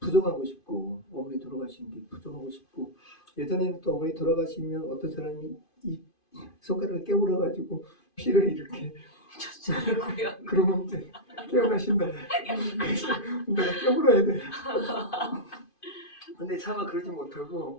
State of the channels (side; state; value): right; late; 2.5 ms